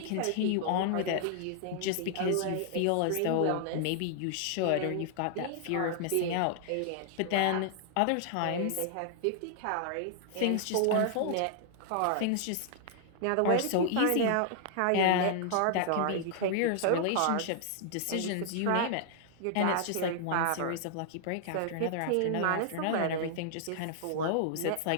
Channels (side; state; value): both; different; correlation -0.01